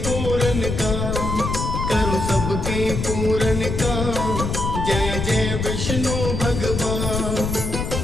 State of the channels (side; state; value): left; noise; rumble, 2 dB below the sound